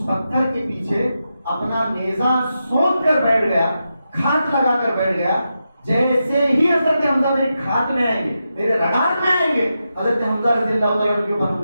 پتھر کے پیچھے اپنا نیزہ سونپ کر بیٹھ گیا, کھات لگا کر بیٹھ گیا. جیسے ہی حضرت حمزہ میری کھات میں آئیں گے, میرے رگاٹ میں آئیں گے, حضرت حمزہ رضی اللہ تعالیٰ عنہ کے اوپر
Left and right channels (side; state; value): both; inverted; correlation -0.88